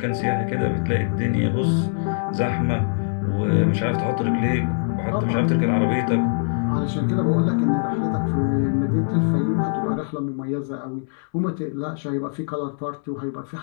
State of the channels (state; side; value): silent; right; 64 dB below the other